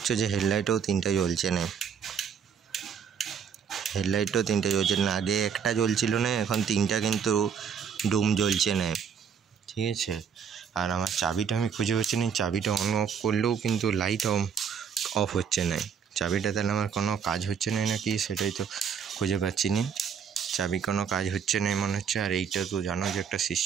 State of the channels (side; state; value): left; quieter; 7.3 dB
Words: যে হেডলাইটও 3টা জ্বলছে না, আগে একটা জ্বলছিল না, এখন 3টা কিন্তু ডুম জ্বলছে না। ঠিক আছে, আর আমার চাবিটা আমি খুঁজে পাচ্ছি না, চাবিটা অন অফ করলেও কিন্তু লাইট অফ হচ্ছে না, চাবিটা তাহলে আমার কোনো কাজ হচ্ছে না নাকি সেটাই তো খুঁজে পাচ্ছি না, চাবি কোনো কাজ হচ্ছে না মনে হচ্ছে। আর এইটা তো জানো যে একটা